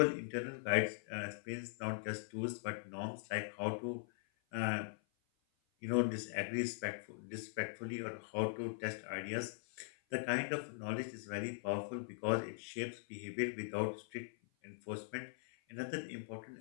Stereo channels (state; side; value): silent; right; 50 dB below the other